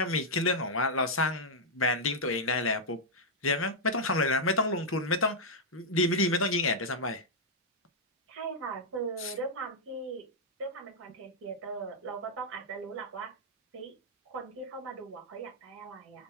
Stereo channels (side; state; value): both; normal; correlation -0.05